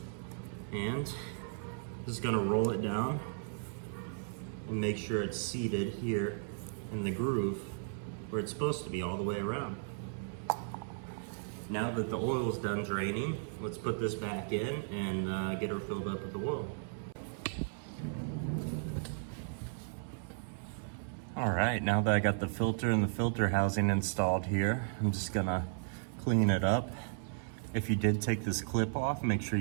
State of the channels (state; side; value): silent; left; 54 dB below the other